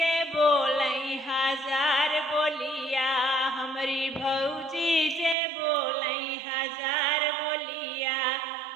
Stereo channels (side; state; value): left; drops out; at 5.4 s